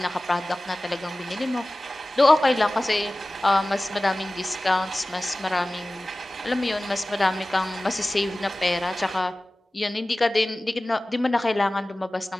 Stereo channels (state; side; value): normal; both; correlation 0.97